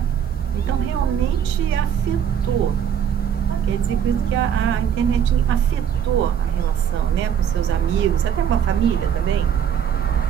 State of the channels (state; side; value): quieter; left; 8.7 dB